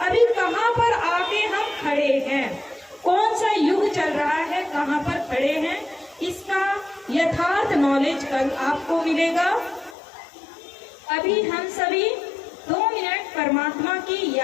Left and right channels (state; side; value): drops out; right; at 10.0 s